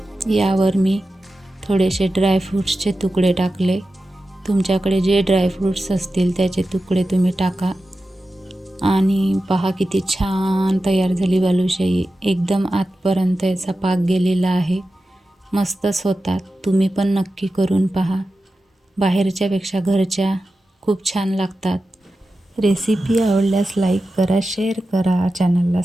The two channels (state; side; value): normal; both; correlation 0.93